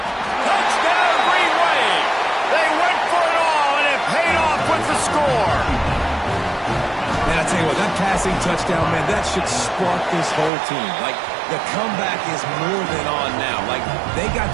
Touchdown, Green Wave. They went for it all, and it paid off with the score. Man, I tell you what, that passing touchdown, man, that should spark this whole team. Like, the comeback is more than on now. Like, they got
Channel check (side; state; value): left; drops out; at 10.5 s